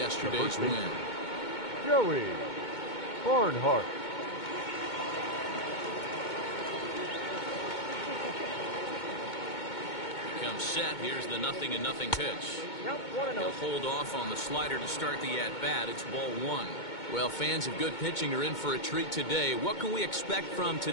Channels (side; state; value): right; late; 2.2 ms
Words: win. Joey Barnhart. Comes set. Here's the 0-0 pitch. He'll hold off on the slider to start the at-bat. It's ball 1. Well, fans of good pitching are in for a treat today. What can we expect from